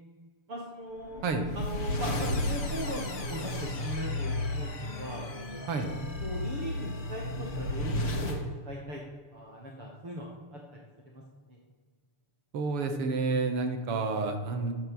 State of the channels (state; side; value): late; left; 6.9 ms